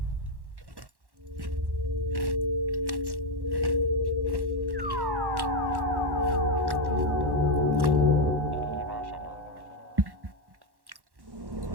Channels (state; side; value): late; left; 1.1 ms